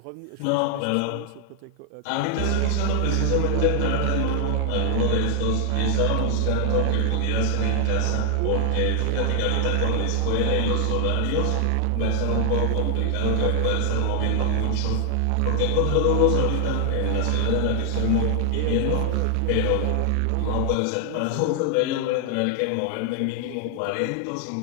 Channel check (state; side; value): different; both; correlation 0.00